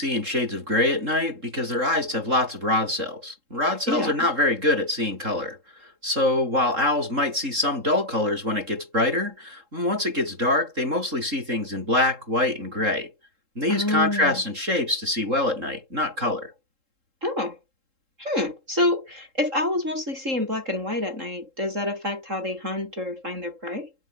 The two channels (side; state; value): left; late; 3.7 ms